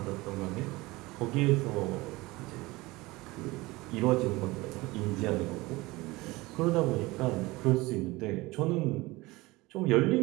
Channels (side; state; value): left; quieter; 21.4 dB